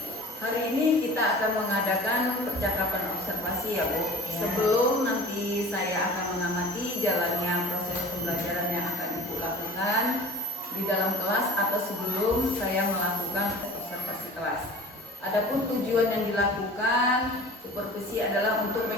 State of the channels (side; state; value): both; normal; correlation 0.42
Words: Hari ini kita akan mengadakan percakapan observasi ya Bu. Ya. Sebelum nanti saya akan mengamati jalannya proses pembelajaran yang akan Ibu lakukan di dalam kelas atau sebelum saya melakukan observasi kelas. Adapun tujuan yang dilakukan supervisi adalah untuk